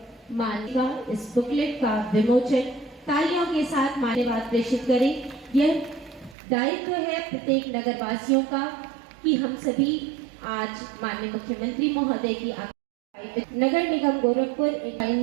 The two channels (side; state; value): left; drops out; at 6.4 s